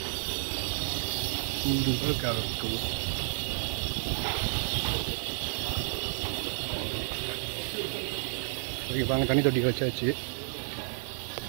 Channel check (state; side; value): silent; left; 57 dB below the other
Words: ஓகே. பாருங்க, தண்ணி தொட்டி வச்சாச்சு.